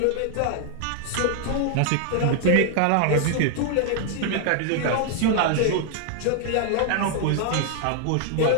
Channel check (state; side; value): different; both; correlation 0.00